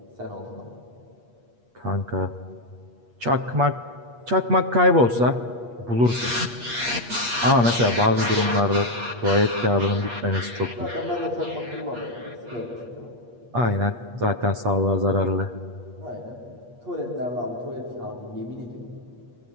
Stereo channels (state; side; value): late; left; 8.4 ms